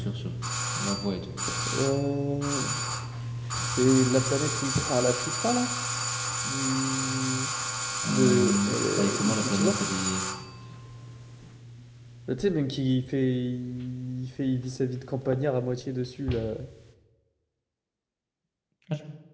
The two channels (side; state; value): both; identical; correlation 1.00